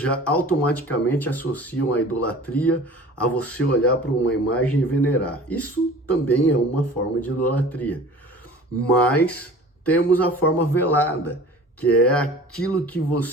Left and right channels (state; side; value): normal; both; correlation 0.43